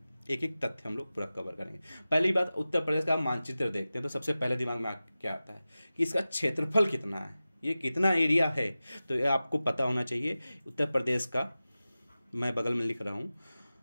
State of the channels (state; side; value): inverted; both; correlation -0.96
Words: एक एक तथ्य हम लोग पूरा कवर करेंगे। पहली बात, उत्तर प्रदेश का मानचित्र देखते हैं तो सबसे पहले दिमाग में क्या आता है कि इसका क्षेत्रफल कितना है, ये कितना एरिया है। तो ये आपको पता होना चाहिए। उत्तर प्रदेश का मैं बगल में लिख रहा हूँ